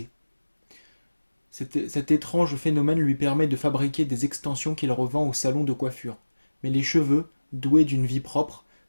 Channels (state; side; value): inverted; both; correlation -1.00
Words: Cet étrange phénomène lui permet de fabriquer des extensions qu'il revend au salon de coiffure. Mais les cheveux, doués d'une vie propre,